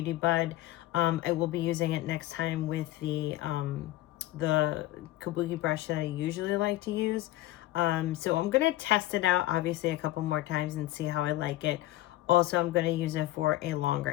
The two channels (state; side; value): quieter; right; 16.2 dB